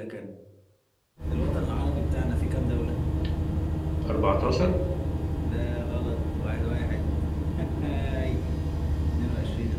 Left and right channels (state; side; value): identical; both; correlation 1.00